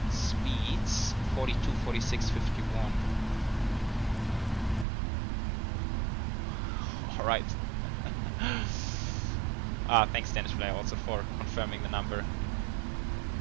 Speeds 42, 46, 51. Alright. Thanks Dennis Fly also for confirming the number.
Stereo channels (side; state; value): left; drops out; at 4.9 s